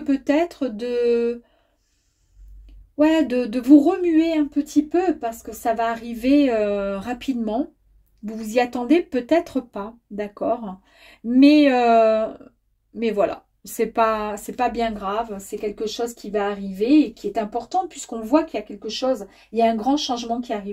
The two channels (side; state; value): both; identical; correlation 1.00